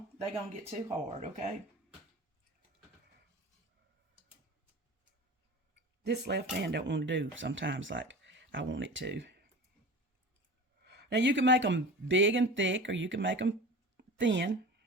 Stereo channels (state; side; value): normal; both; correlation 0.35